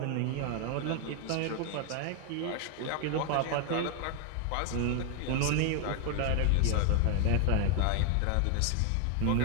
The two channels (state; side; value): different; both; correlation 0.01